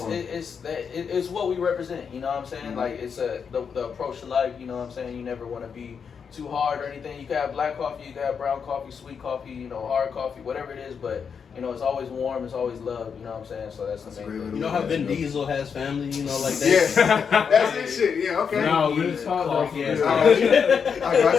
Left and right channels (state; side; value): quieter; right; 6.5 dB